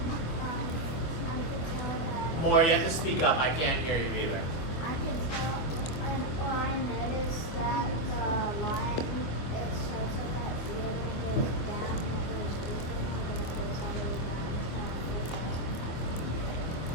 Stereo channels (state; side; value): late; right; 25 ms